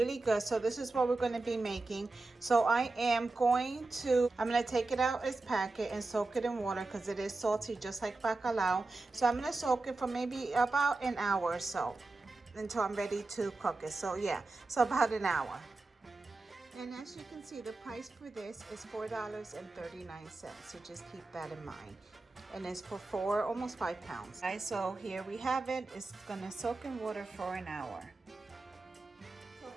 good. So this is what we're going to be making. So I'm going to take it out its packet and soak it in water because it is salty just like bacalao. So I'm going to soak it for maybe about an hour or so until I'm ready to cook it. So yeah, so about an hour. And as you can see, the price for this is $4.39. So just keep that in mind. And it's for almost 5 pounds. Right, so here we have it. It's gonna soak in water for an hour. So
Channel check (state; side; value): quieter; left; 3.3 dB